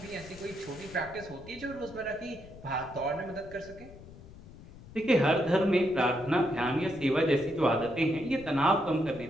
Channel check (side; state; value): left; noise; rumble, 18 dB below the sound